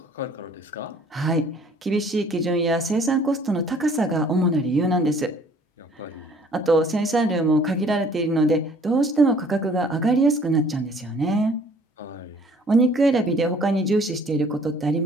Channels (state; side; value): normal; both; correlation 0.56